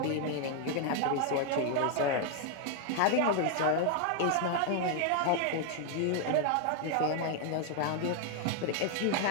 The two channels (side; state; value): both; different; correlation 0.00